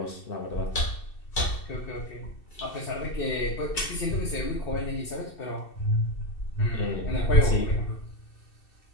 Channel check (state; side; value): late; right; 2.7 ms